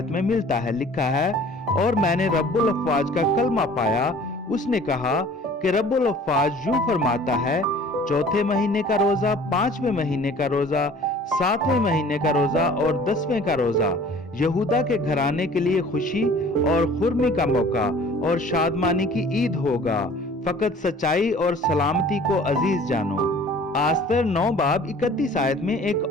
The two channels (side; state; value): both; normal; correlation 0.49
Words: में मिलता है। लिखा है, और मैंने रब्बुल अफ़वाज का कलमा पाया, उसने कहा कि रब्बुल अफ़वाज यूं फरमाता है, चौथे महीने का रोजा, 5वें महीने का रोजा, 7वें महीने का रोजा और 10वें का रोजा यहूदा के घराने के लिए खुशी और खुर्मी का मौका और शादमानी की ईद होगा। फकत सच्चाई और सलामती को अजीज जानो। आस्तर 9 बाब 31 आयत में एक